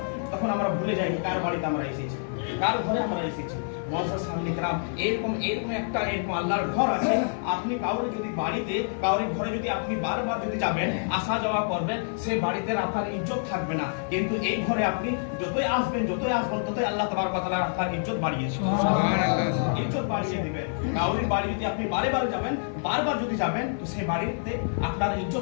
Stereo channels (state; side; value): silent; right; 56 dB below the other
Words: তখন আমরা ভুলে যাই কার বাড়িতে আমরা এসেছি, কার ঘরে আমরা এসেছি। মসজিদ সামনে গ্রাম এরকম একটা আল্লাহর ঘর আছে। আপনি কাউরে যদি বাড়িতে, কাউরি ঘরে যদি আপনি বারবার যদি যাবেন, আসা যাওয়া করবেন, সে বাড়িতে আপনার ইজ্জত থাকবে না। কিন্তু এই ঘরে আপনি যতই আসবেন ততই আল্লাহ তাবারক ওয়া তাআলা আপনার ইজ্জত বাড়িয়েছে, ইজ্জত বাড়িয়ে দিবেন। কাউরি বাড়ি যদি আপনি বারবার যাবেন তো সেই বাড়িতে আপনার